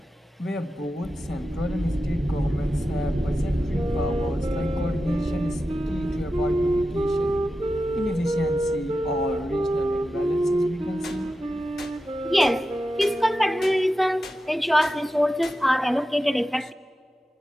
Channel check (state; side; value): normal; both; correlation 0.91